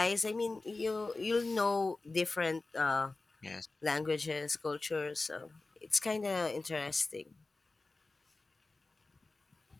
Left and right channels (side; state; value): right; quieter; 3.4 dB